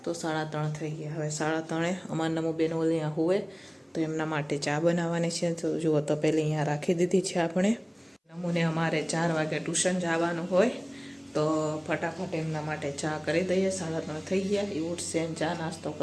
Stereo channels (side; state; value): both; identical; correlation 1.00